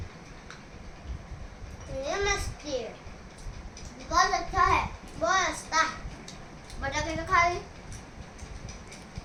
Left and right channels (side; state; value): both; identical; correlation 1.00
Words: ये मस्ती बहुत अच्छा है बहुत अच्छा बड़ा करके खा ली